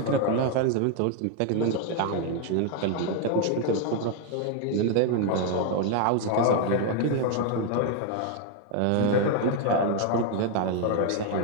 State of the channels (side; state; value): both; different; correlation 0.01